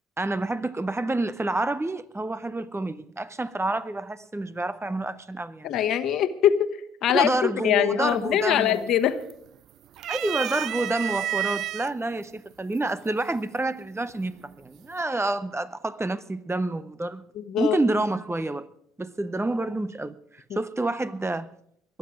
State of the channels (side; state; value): both; normal; correlation 0.68